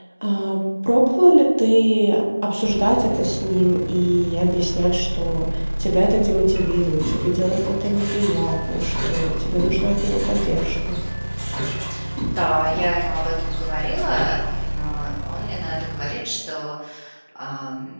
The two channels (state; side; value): inverted; both; correlation -1.00